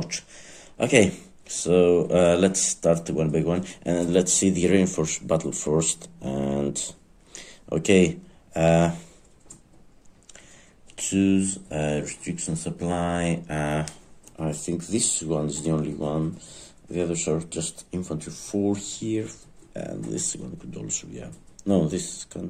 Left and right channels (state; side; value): identical; both; correlation 1.00